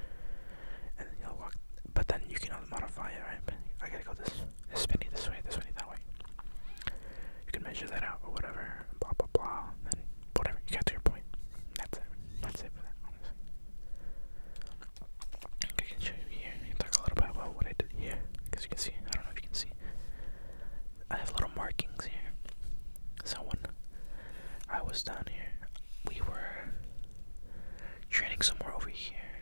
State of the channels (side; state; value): both; inverted; correlation -1.00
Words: And then you'll walk. But then you can modify it, right? I gotta go this spinny this way, that way. You can measure that out or whatever, blah blah blah, and whatever, you get to your point. That's it for that, honestly. I can show you here. I can talk a little bit about what I did here, because you can see, I don't know if you can see, was down here, we were training somewhere over here.